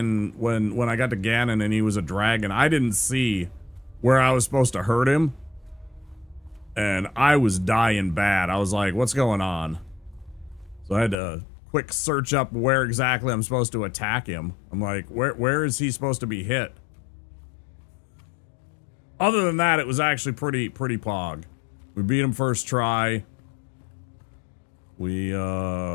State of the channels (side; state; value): right; drops out; at 11.2 s